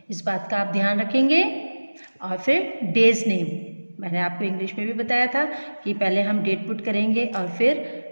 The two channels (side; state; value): both; inverted; correlation -1.00